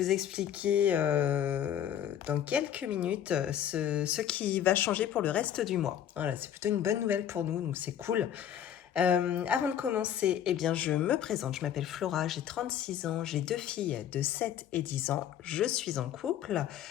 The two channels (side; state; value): right; quieter; 10.1 dB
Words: vous expliquer dans quelques minutes ce qui va changer pour le reste du mois. Voilà, c'est plutôt une bonne nouvelle pour nous, donc c'est cool. Avant de commencer, eh bien, je me présente. Je m'appelle Flora, j'ai 36 ans, j'ai 2 filles de 7 et 10 ans. Je suis en couple.